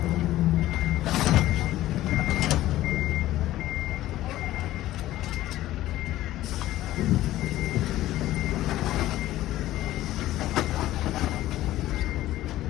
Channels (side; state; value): right; quieter; 15.0 dB